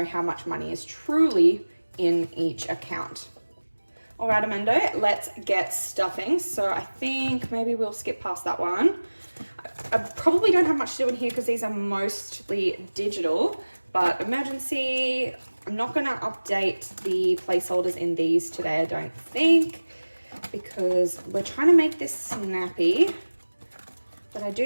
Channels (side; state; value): both; inverted; correlation -1.00